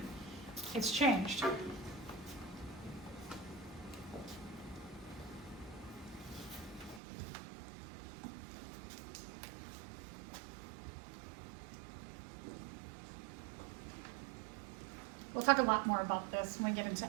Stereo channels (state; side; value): drops out; left; at 7.0 s